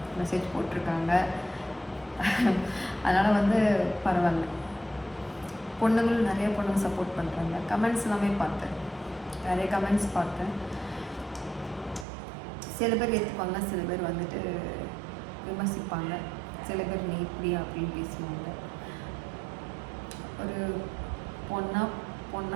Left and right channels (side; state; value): left; drops out; at 12.1 s